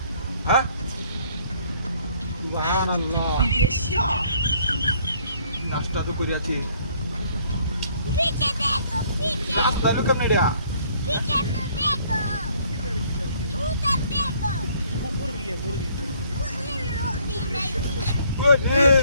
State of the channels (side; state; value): both; inverted; correlation -0.62